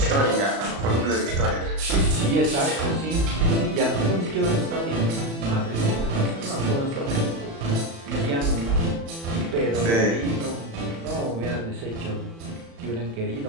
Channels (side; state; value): left; late; 36 ms